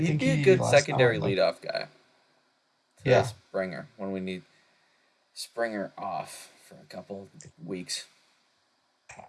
think be a he good last secondary time like leadoff guy to yeah. Springer when we need Springer off for a couple weeks.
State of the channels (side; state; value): both; identical; correlation 1.00